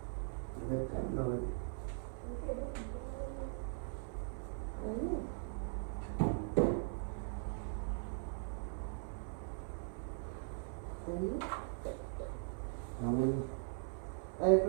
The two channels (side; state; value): left; silent; 51 dB below the other